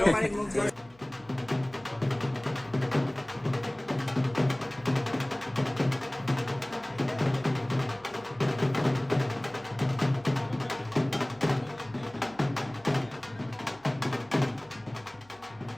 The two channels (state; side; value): noise; left; hum, 29 dB below the sound